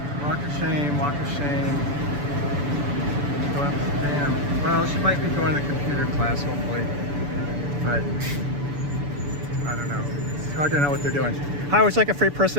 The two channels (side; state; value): left; late; 6.9 ms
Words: Walk of shame, walk of shame. Go up, damn. Well, she might be going to the computer class, hopefully. But, I don't know. It's hard to know what they're doing. Hi, would you like a free